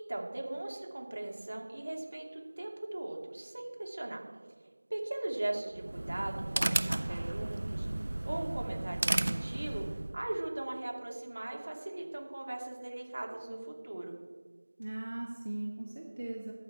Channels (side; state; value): both; inverted; correlation -1.00